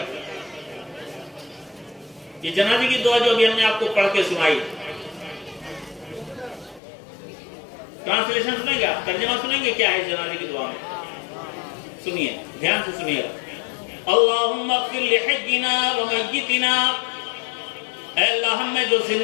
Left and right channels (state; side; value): drops out; right; at 6.8 s